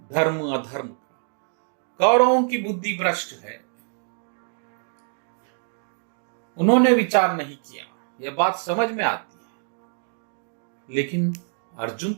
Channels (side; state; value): left; silent; 57 dB below the other